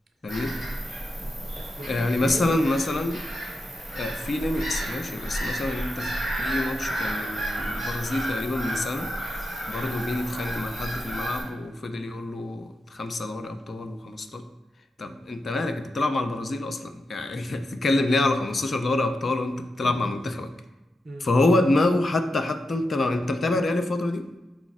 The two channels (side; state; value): both; normal; correlation 0.88